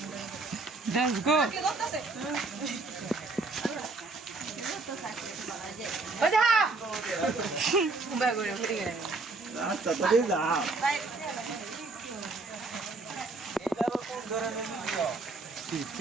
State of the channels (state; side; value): quieter; left; 3.6 dB